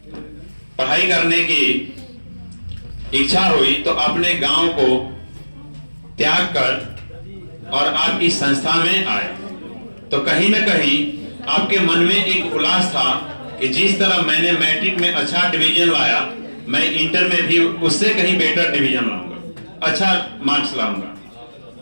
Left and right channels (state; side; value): inverted; both; correlation -1.00